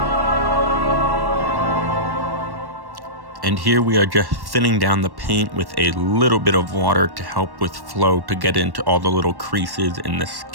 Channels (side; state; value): left; late; 1.1 ms